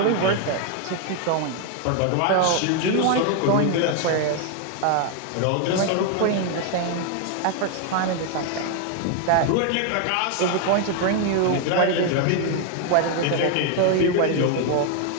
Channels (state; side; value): different; both; correlation 0.01